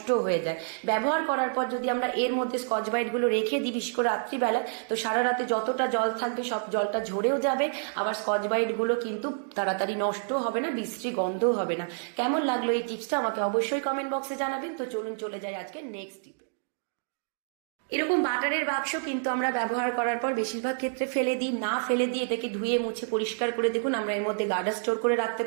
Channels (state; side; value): silent; left; digital silence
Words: হয়ে যায়। ব্যবহার করার পর যদি আমরা এর মধ্যে স্কচ ব্রাইটগুলো রেখে দিই, বিশেষ করে রাত্রিবেলা, তো সারা রাতে যতটা জল থাকবে সব জলটা ঝরেও যাবে। আবার স্কচ ব্রাইটগুলো কিন্তু তাড়াতাড়ি নষ্ট হবে না, বিশ্রী গন্ধও হবে না। কেমন লাগলো এই টিপসটা আমাকে অবশ্যই কমেন্ট বক্সে জানাবেন। তো চলুন চলে যাই আজকে নেক্সট টিপে। এরকম বাটারের বাক্স কিন্তু আমরা ব্যবহার করার পর বেশিরভাগ ক্ষেত্রে ফেলে দিই। না ফেলে দিয়ে এটাকে ধুয়ে মুছে পরিষ্কার করে দেখুন আমরা এর মধ্যে গার্ডার স্টোর করে রাখতে